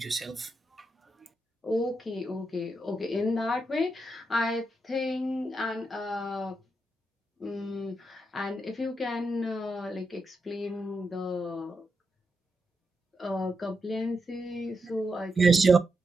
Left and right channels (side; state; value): both; normal; correlation 0.84